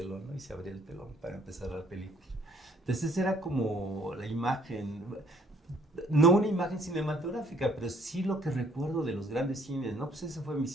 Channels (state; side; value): normal; both; correlation 0.62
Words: ¿no? Y se abría el telón para empezar la película. Entonces era como la imagen, no una imagen cinematográfica, pero sí lo que recuerdo de los grandes cines, ¿no? Pues ese fue mi